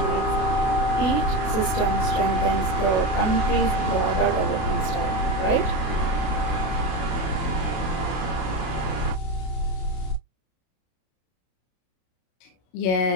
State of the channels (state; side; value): late; right; 32 ms